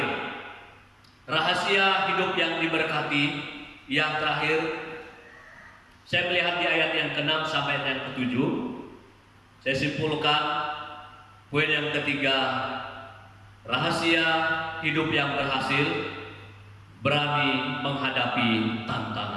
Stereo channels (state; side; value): identical; both; correlation 1.00